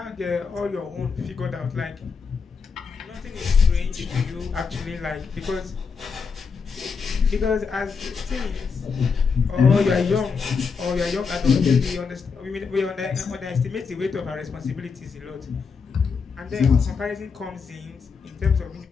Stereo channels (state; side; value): quieter; right; 5.5 dB